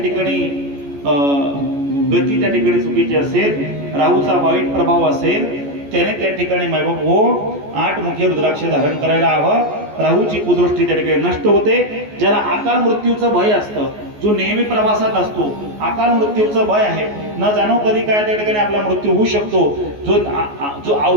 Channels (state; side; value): late; left; 14 ms